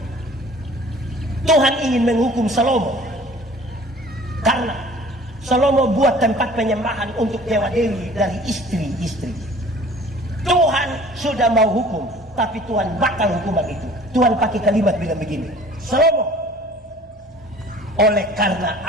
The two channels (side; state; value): both; normal; correlation 0.49